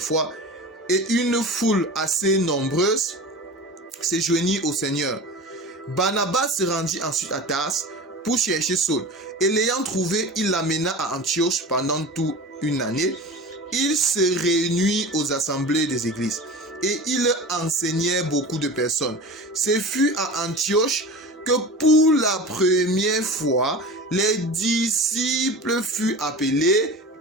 et une foule assez nombreuse se joignit au Seigneur. Barnabas se rendit ensuite à Tars pour chercher Saul, et l'ayant trouvé, il l'amena à Antioche pendant toute une année. Il se réunit aux assemblées des églises, et il enseignait beaucoup de personnes. Ce fut à Antioche que pour la première fois, les disciples furent appelés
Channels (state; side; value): normal; both; correlation 0.33